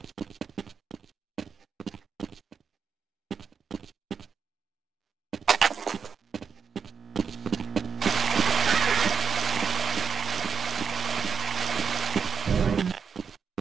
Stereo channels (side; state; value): left; quieter; 6.4 dB